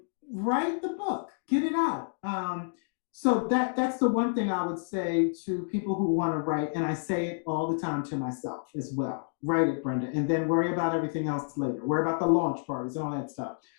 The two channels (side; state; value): right; silent; digital silence